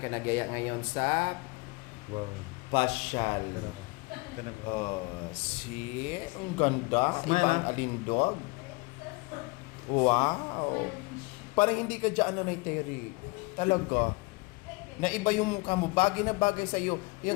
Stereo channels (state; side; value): quieter; right; 26.7 dB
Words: Nagyaya ngayon sa Wow. pasyal. Oh, see? Ang ganda. Smile, Ibang ah. alindog. Wow. Parang hindi ka dyan, Nanay Terry. Talaga. Na iba yung mukha mo. Bagay na bagay sa'yo.